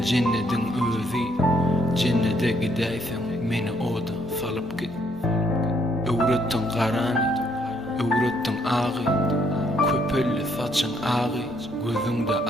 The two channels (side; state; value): right; noise; rumble, 23 dB below the sound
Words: cennetin özü. Cennete gideysen meni oda salıp git. Öğrettin karanı, öğrettin ağı, köpüllü saçın ağı, gözünde